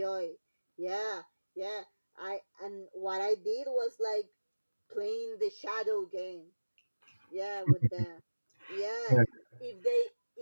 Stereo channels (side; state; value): both; inverted; correlation -1.00